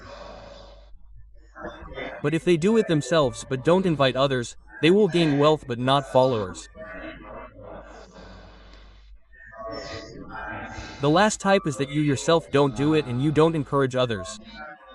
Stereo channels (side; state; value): both; identical; correlation 1.00